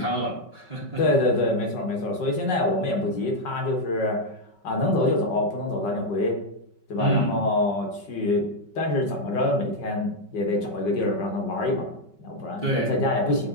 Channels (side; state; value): right; late; 5.3 ms